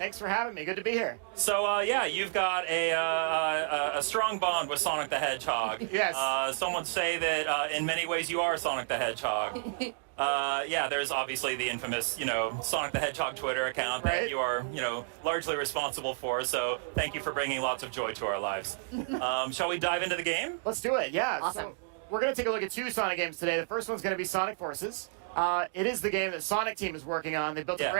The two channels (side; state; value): left; quieter; 39.9 dB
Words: for having me. Good to be here. So, yeah, you've got a strong bond with Sonic the Hedgehog. Yes. Some would say that in many ways you are Sonic the Hedgehog. Yeah, there's obviously the infamous, Sonic the Hedgehog Twitter account that you are, largely responsible for. So thank you for bringing lots of joy to our lives. Shall we dive into the game? Let's do it. Yeah. Awesome. So we're going to take a look at two Sonic games today. The first one's going to be Sonic Forces. It is the game that Sonic Team is working on. They built a